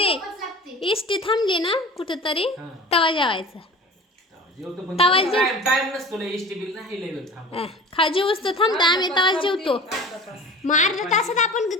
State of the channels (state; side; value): normal; both; correlation 0.39